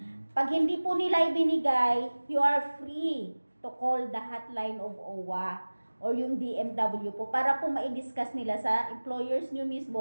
Pag hindi po nila ibinigay, you are free to call the hotline of OWA or yung DMW po para po ma-discuss nila sa employers nyo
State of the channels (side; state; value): both; inverted; correlation -1.00